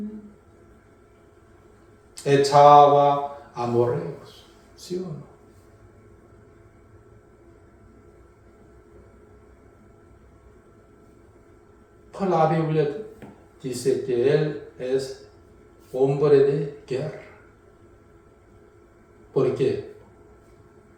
Echaba amorreos, ¿sí o no? Pues la Biblia dice que él es hombre de guerra. ¿Por qué?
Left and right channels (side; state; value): both; identical; correlation 1.00